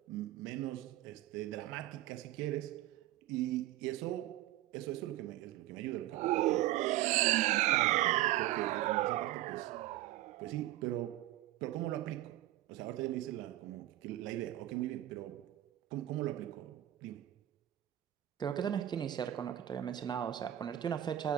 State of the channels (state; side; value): quieter; left; 14.3 dB